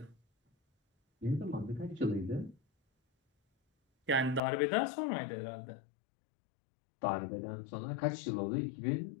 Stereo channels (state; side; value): drops out; right; at 4.4 s